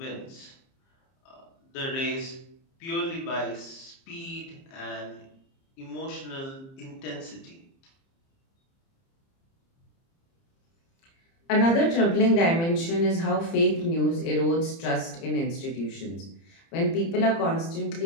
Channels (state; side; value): late; right; 30 ms